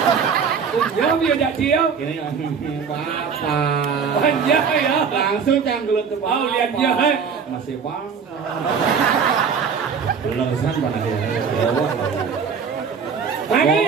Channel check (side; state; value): left; quieter; 6.3 dB